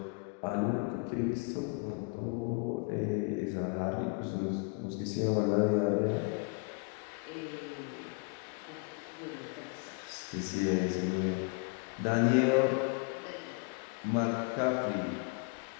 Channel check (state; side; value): quieter; right; 31.5 dB